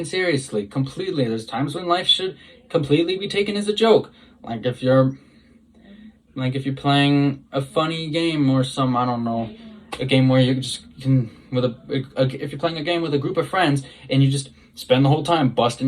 seriously, completely. There's times when life should completely be taken as a joke. Like if you're playing a funny game or some, I don't know, a game where you just can, if you're playing a game with a group of friends and you just spend the whole time busting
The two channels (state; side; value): identical; both; correlation 1.00